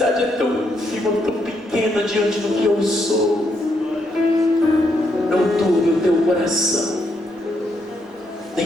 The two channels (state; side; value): normal; both; correlation 0.77